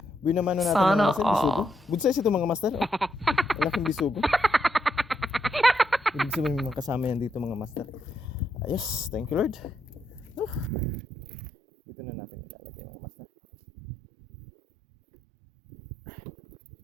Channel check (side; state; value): left; drops out; at 10.7 s